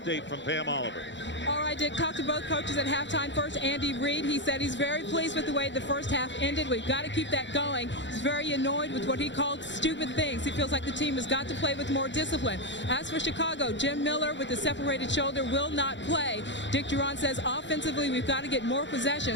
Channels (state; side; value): late; right; 0.53 ms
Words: from Pam Oliver. All right, Dick, talked to both coaches at halftime. First, Andy Reid. He said he's very pleased with the way the first half ended. We've got to keep that going. He's very annoyed with what he called stupid things. He feels like the team has got to play with more discipline. As for Chicago, Jim Miller with the separated shoulder will not play. Dick Duran says offensively, we've got to get more